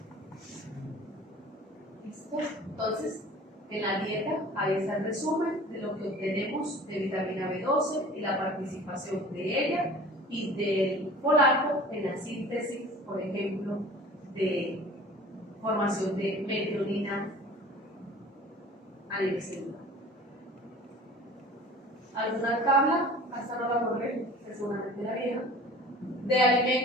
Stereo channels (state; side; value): normal; both; correlation 0.44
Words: ¿Listo? Entonces, en la dieta, ahí está el resumen de lo que obtenemos de vitamina B12 y la participación de ella y del folato en la síntesis, por ejemplo, de formación de metionina a nivel celular. ¿Alguna tabla? Hasta no la correr, seguramente la vieja, de